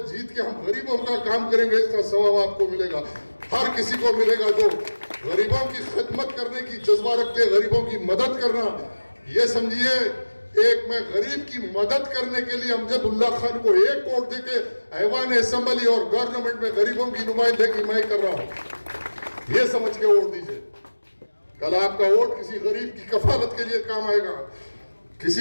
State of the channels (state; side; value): inverted; both; correlation -1.00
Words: जीत के हम गरीबों का काम करेंगे, इसका सवाब आपको मिलेगा, हर किसी को मिलेगा जो गरीबों की खिदमत करने की जज्बा रखते हैं, गरीबों की मदद करना। ये समझिए एक मैं गरीब की मदद करने के लिए अमजदुल्ला खान को एक वोट देके ऐवान असेंबली और गवर्नमेंट में गरीबों की नुमाइंदगी मैं कर रहा हूं, ये समझ के वोट दीजिए। कल आपका वोट किसी गरीब की कफालत के लिए काम आएगा,